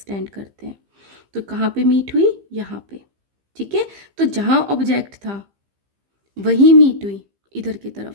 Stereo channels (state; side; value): late; left; 15 ms